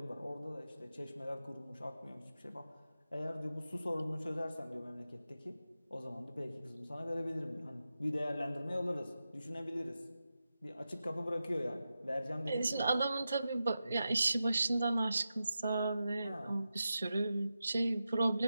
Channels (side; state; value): both; inverted; correlation -0.91